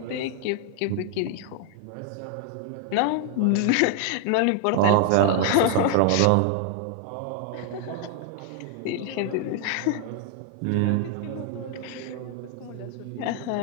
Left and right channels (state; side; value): different; both; correlation 0.00